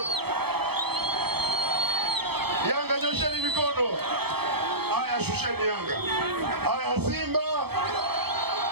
Yanga nyosheni mikono. Haya shusheni Yanga. Haya Simba.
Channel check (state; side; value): late; left; 0.97 ms